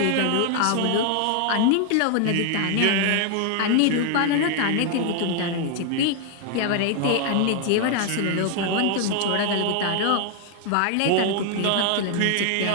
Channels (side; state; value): both; different; correlation 0.00